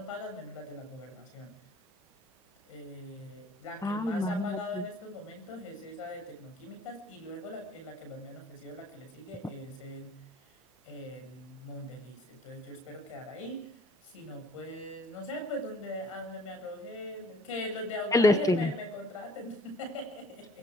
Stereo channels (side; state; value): both; normal; correlation 0.55